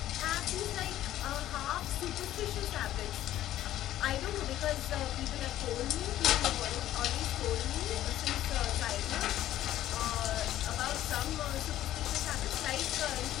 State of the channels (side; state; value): right; quieter; 13.2 dB